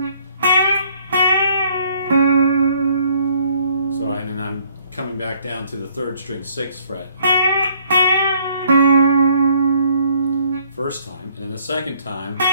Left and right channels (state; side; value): inverted; both; correlation -0.64